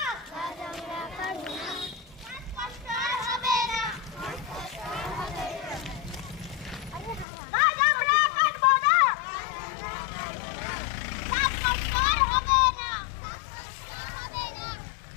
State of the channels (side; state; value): right; drops out; at 7.2 s